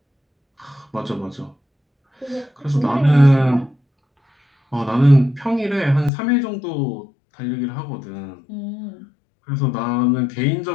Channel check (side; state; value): right; drops out; at 6.1 s